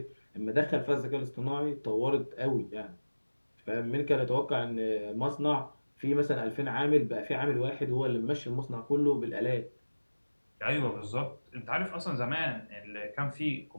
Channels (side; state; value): both; inverted; correlation -1.00